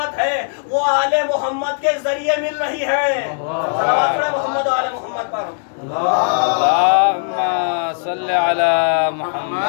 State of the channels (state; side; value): silent; right; digital silence